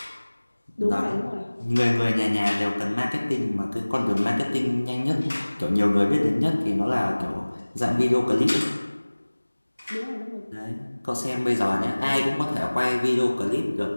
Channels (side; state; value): both; inverted; correlation -1.00